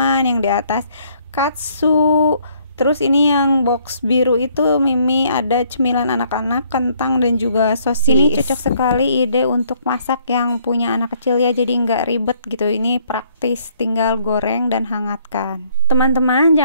yang di atas katsu. Terus ini yang box biru itu Mimi ada cemilan anak-anak, kentang dan juga sosis. Ini cocok sekali ide untuk masak yang punya anak kecil ya, jadi nggak ribet gitu. Ini praktis, tinggal goreng dan hangatkan. Teman-teman,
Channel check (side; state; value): both; inverted; correlation -0.65